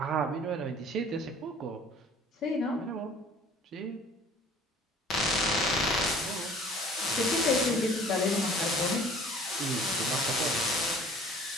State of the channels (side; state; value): both; normal; correlation 0.50